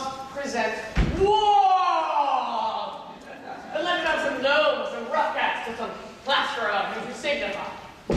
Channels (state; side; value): identical; both; correlation 1.00